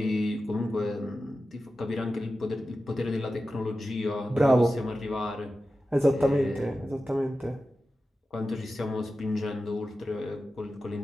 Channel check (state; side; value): normal; both; correlation 0.93